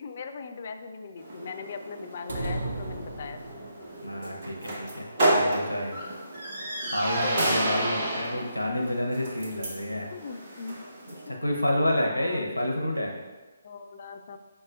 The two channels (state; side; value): inverted; both; correlation -0.81